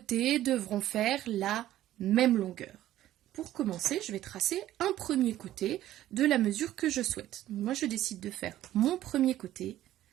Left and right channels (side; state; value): left; quieter; 13.6 dB